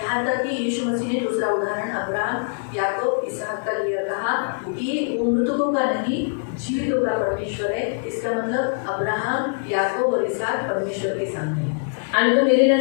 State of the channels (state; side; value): silent; right; digital silence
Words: तक कि यीशु मसीह ने दूसरा उदाहरण अब्राहम याकूब इसहाक का लिया, कहा कि वो मृतकों का नहीं जीवितों का परमेश्वर है। इसका मतलब अब्राहम याकूब और इसहाक परमेश्वर के सामने है। आणि तो